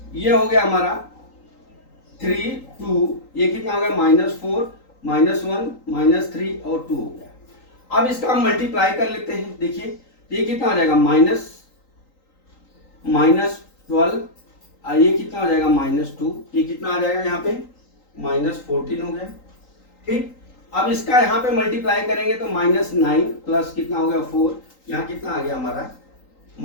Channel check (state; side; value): late; right; 3.8 ms